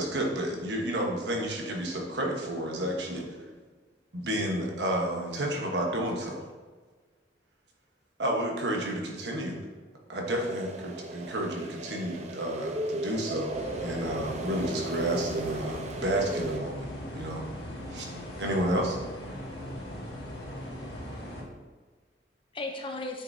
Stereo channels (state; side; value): normal; both; correlation 0.33